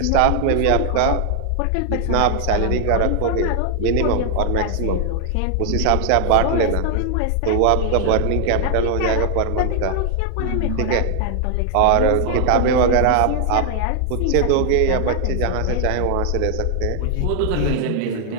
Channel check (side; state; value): both; different; correlation 0.00